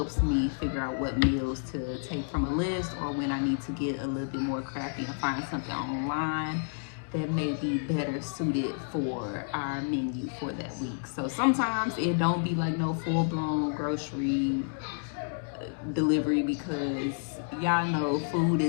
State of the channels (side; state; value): right; silent; digital silence